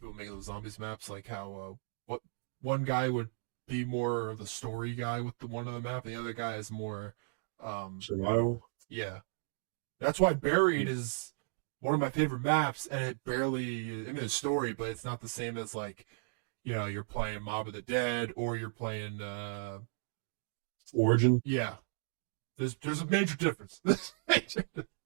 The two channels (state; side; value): silent; left; digital silence